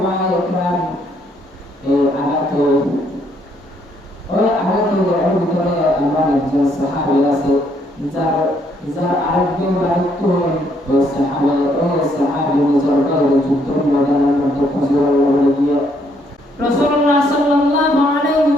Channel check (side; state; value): both; normal; correlation 0.70